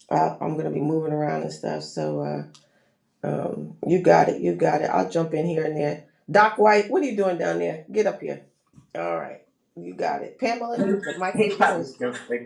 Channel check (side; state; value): both; identical; correlation 1.00